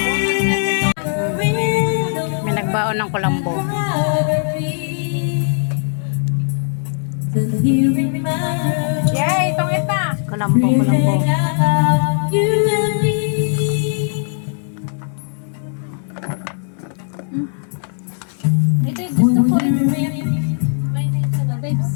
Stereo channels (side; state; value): right; silent; 67 dB below the other